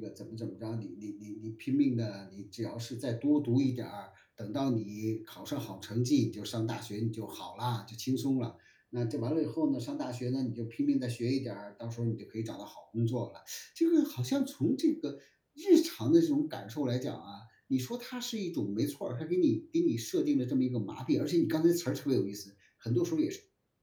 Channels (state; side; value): identical; both; correlation 1.00